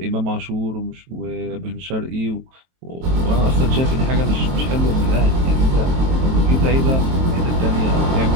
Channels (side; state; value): left; late; 23 ms